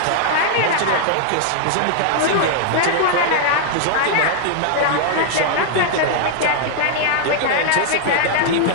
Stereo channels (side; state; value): both; different; correlation -0.01